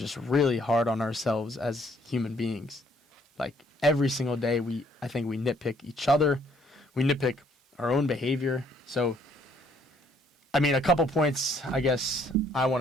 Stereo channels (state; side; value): normal; both; correlation 0.65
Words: really hard on ourselves as human beings. Like, every single day, I think we nitpick each other. We nitpick our own behavior. So, I mean, a couple points I guess I